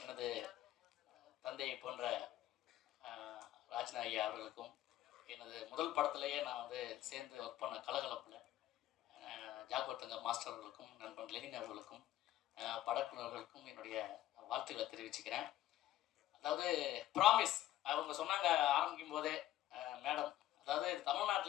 எனது தந்தையை போன்ற ராஜ்னா ஐயா அவர்களுக்கும், எனது முதல் படத்திலேயே நான் வந்து சேர்ந்து ஒர்க் பண்ண கலகலப்பில் ஜாகோத்தங்க மாஸ்டர் அவர்களுக்கும், நண்பன் லெனின் அவர்களுக்கும், படக்குழுவர்களுக்கும் என்னுடைய வாழ்த்துக்களை தெரிவிச்சுக்கிறேன். அதாவது ப்ராமிஸ் அவங்க சொன்னாங்க ஆரம்பிக்கும் போதே மேடம், அதாவது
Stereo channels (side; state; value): right; quieter; 13.7 dB